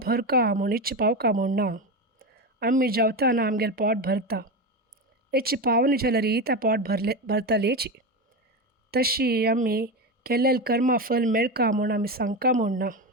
भरका म्हूण इच्छा पावका म्हूण ना. आमी जेवतना आमगेल पोट भरता. इच्छा पावना जाल्यार तें पोट भरतलेची. तशी आमी केल्लें कर्मा फल मेळका म्हूण आमी सांगका म्हूण ना.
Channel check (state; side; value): normal; both; correlation 0.18